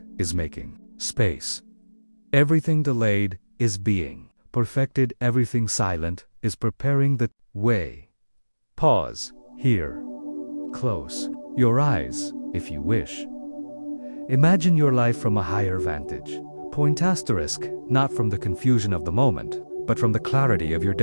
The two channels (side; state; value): both; inverted; correlation -1.00